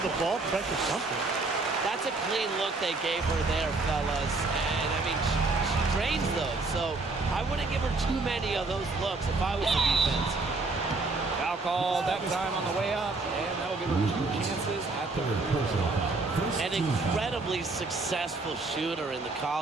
the ball, pressure something. That's a clean look they gave her there, fellas. And, I mean, she drains those. So I wouldn't give her too many of those looks if I was the defense. Foul called that time on the way up, and that'll give her 2 chances at the An incredibly successful shooter in the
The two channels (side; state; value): left; quieter; 3.5 dB